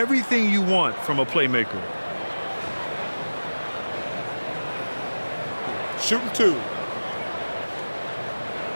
you want from a playmaker. Shooting 2.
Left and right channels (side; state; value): both; inverted; correlation -1.00